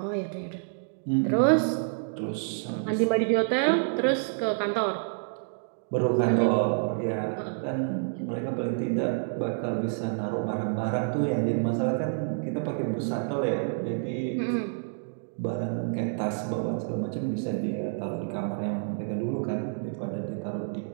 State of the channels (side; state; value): left; silent; digital silence